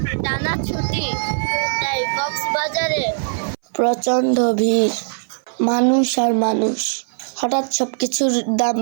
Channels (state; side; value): silent; left; 62 dB below the other